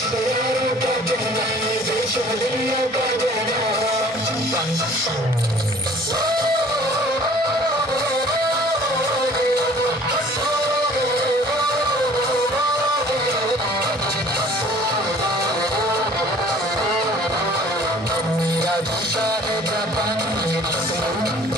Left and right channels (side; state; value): both; normal; correlation 0.51